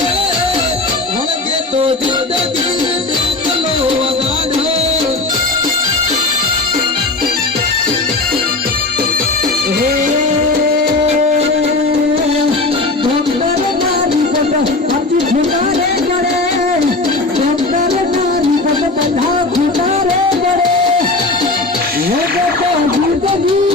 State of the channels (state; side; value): quieter; right; 3.2 dB